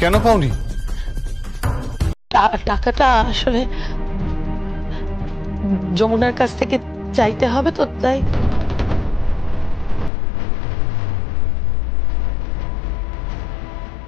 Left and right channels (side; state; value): right; drops out; at 10.1 s